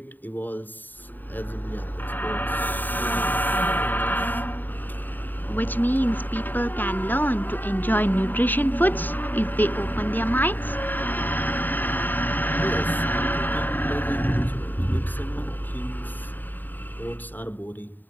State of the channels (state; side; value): late; right; 0.089 ms